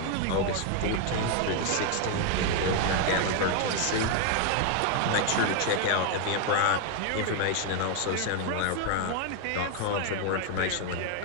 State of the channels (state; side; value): different; both; correlation 0.00